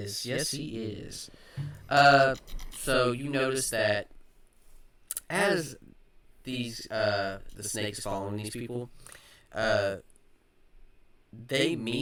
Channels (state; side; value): identical; both; correlation 1.00